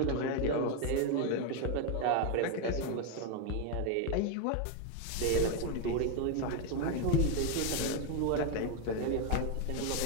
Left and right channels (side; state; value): both; different; correlation 0.01